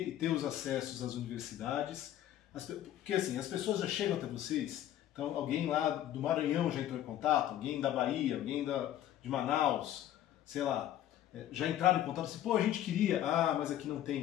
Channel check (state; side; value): quieter; right; 12.1 dB